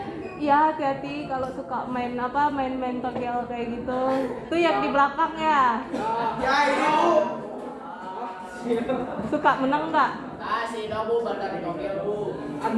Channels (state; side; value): identical; both; correlation 1.00